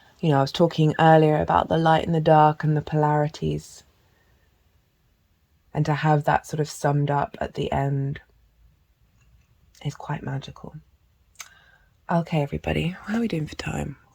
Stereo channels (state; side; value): identical; both; correlation 1.00